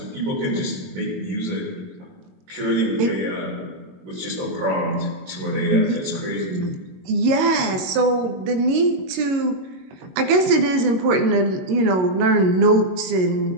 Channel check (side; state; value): left; late; 22 ms